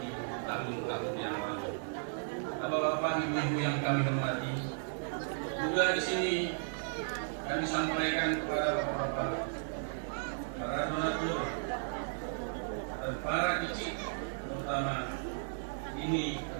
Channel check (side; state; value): left; silent; digital silence